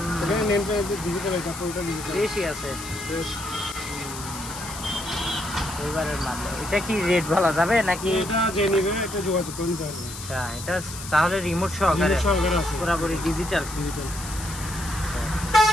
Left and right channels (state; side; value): noise; left; hiss, 11 dB below the sound